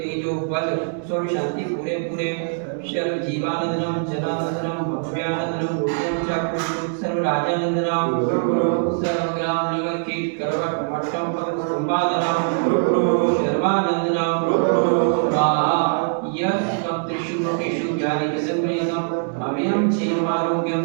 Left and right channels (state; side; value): silent; left; 64 dB below the other